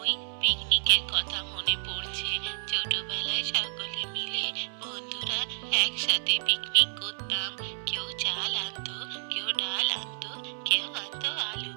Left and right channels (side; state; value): left; silent; 58 dB below the other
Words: ওই পিকনিকের কথা মনে পড়ছে। ছোটবেলায় সকলে মিলে বন্ধুরা একসাথে পিকনিক করতাম। কেউ চাল আনতো, কেউ ডাল আনতো, কেউ আনতো আলু,